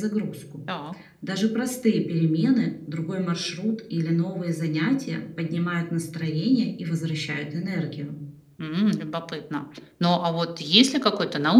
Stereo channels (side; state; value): both; identical; correlation 1.00